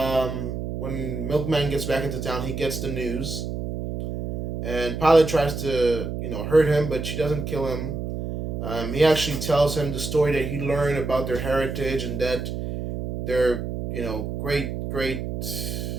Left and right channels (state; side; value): noise; right; hum, 4 dB below the sound